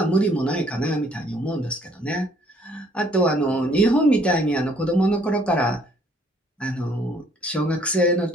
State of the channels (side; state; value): both; normal; correlation 0.62